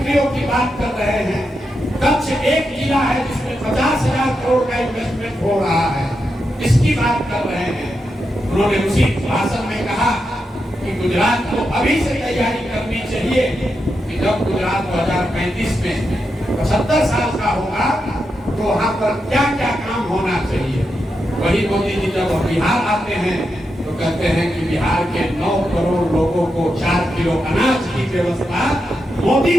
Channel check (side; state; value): both; normal; correlation 0.86